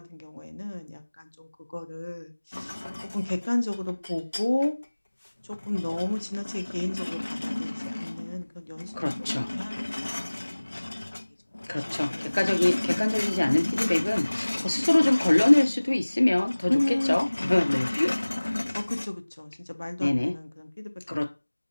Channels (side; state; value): both; inverted; correlation -1.00